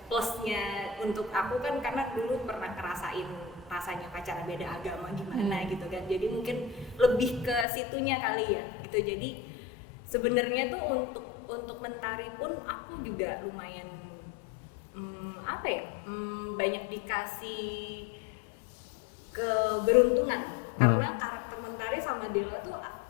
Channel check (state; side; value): drops out; right; at 7.7 s